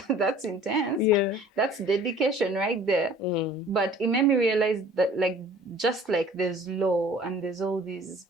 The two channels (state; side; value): normal; both; correlation 0.50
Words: intense. Yeah. That's dedication right there. But it made me realize that just like there's law and there's all these